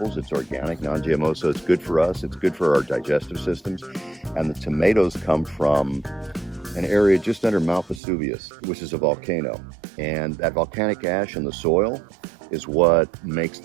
It's organic, non-GMO, so it's good for us. It's good for our digestive systems. And the tomatoes come from an area just under Mount Vesuvius, which is a volcano. And that volcanic ash in the soil is what makes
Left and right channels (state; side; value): drops out; left; at 8.0 s